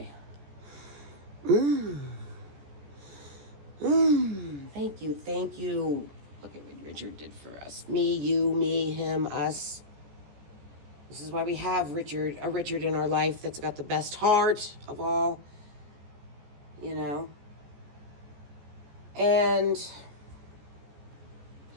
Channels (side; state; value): left; late; 14 ms